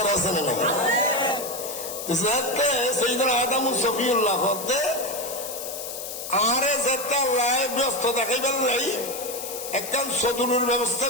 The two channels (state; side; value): noise; left; hiss, 8 dB below the sound